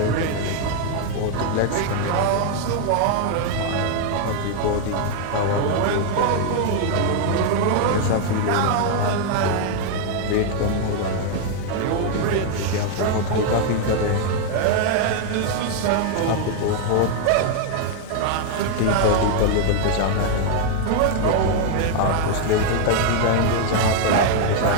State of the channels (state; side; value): different; both; correlation 0.00